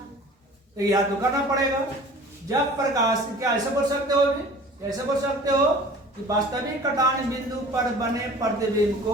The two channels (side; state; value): both; normal; correlation 0.44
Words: याद तो करना पड़ेगा। जब प्रकाश, क्या ऐसे बोल सकते हो भी, ऐसे बोल सकते हो कि वास्तविक कटान बिंदु पर बने प्रतिबिंब को